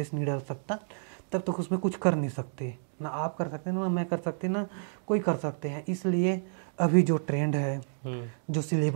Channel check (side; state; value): left; silent; digital silence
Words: नहीं डाल सकता, तब तक उसमें कुछ कर नहीं सकते, ना आप कर सकते, ना मैं कर सकते, ना कोई कर सकते हैं। इसलिए अभी जो ट्रेंड है, जो